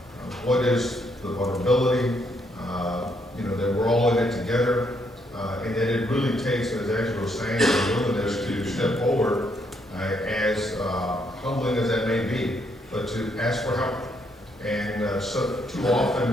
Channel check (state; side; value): normal; both; correlation 0.74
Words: what is the vulnerability, that we're all in it together, and that it really takes, as Angela was saying, the willingness to step forward, as humbling as that may be, but to ask for help. And so too